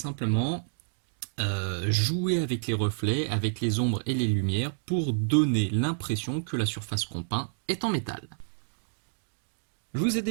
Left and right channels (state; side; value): silent; left; digital silence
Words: jouer avec les reflets, avec les ombres et les lumières pour donner l'impression que la surface qu'on peint est en métal. Je vous ai